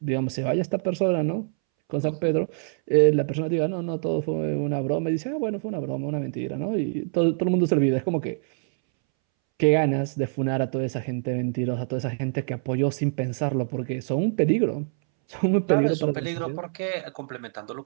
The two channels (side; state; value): left; silent; 62 dB below the other